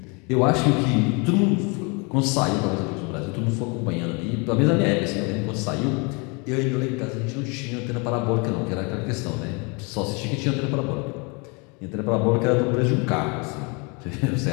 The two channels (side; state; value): right; quieter; 31.2 dB